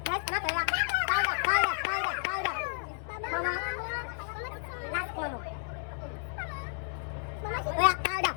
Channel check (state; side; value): silent; right; 57 dB below the other